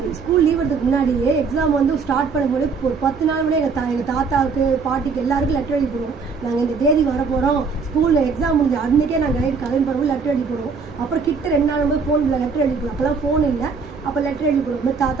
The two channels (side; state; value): left; quieter; 5.1 dB